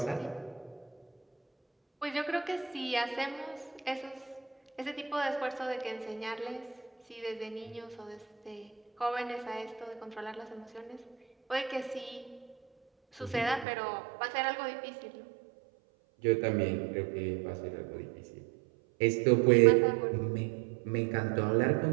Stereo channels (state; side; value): drops out; left; at 13.7 s